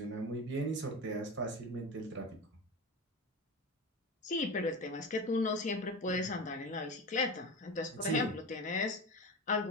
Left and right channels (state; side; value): normal; both; correlation 0.26